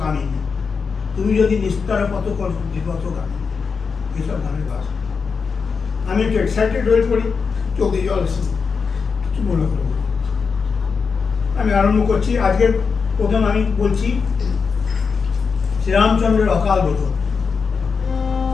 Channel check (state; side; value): quieter; right; 5.4 dB